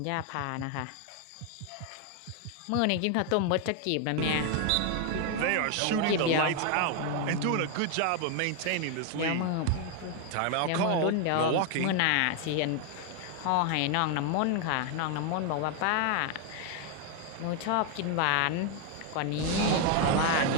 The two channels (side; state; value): both; different; correlation 0.01